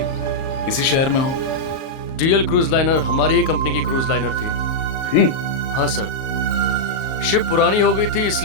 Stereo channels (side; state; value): right; late; 38 ms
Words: इसी शहर में हो। डीएल क्रूज लाइनर हमारी ही कंपनी की क्रूज लाइनर थी। हाँ सर, शिप पुरानी हो गई थी,